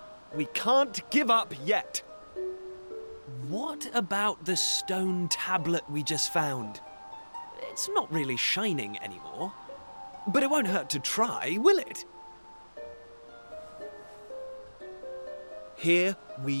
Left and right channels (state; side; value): inverted; both; correlation -1.00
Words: we can't give up yet. What about the stone tablet we just found? It's not really shining anymore. But it won't hurt to try, will it? Here